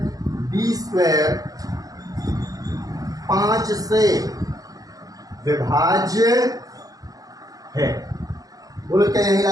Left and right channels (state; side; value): late; left; 0.17 ms